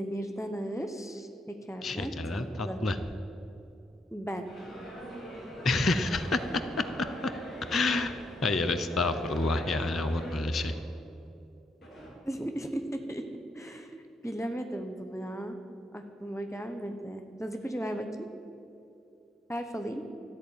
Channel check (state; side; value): normal; both; correlation 0.78